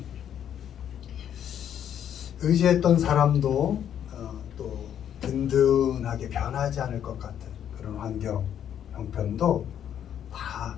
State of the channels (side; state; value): right; quieter; 9.7 dB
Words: 의지했던 사람도 또 든든하게 변하지 않을 것 같은 그런 환경, 형편도 다